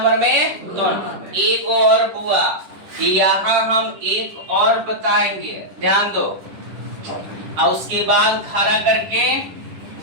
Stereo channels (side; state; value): left; late; 10 ms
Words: में? 2 नंबर। एक और बुआ यहाँ हम एक और बताएंगे, ध्यान दो, और उसके बाद खड़ा करके